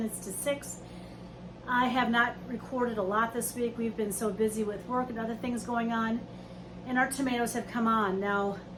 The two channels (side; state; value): both; identical; correlation 1.00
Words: to 6. I have not recorded a lot this week. We've been so busy with work and other things going on, and our tomatoes have come on. Now,